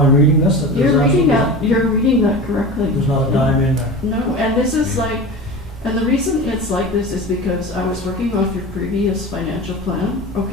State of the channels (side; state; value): both; normal; correlation 0.31